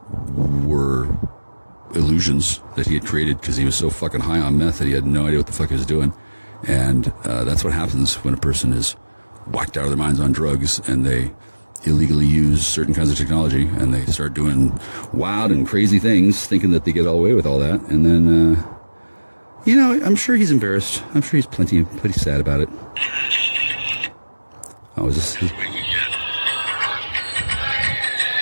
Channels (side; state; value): both; inverted; correlation -1.00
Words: were illusions that he had created because he was so fucking high on meth that he had no idea what the fuck he was doing. And that's what happens when a person is whacked out of their minds on drugs and they illegally use certain kinds of technology, and they start doing wild and crazy things, thinking that they get all away with all that, and then, I'm sure he's embarrassed. I'm sure he's pretty sad about it. Oh, is this?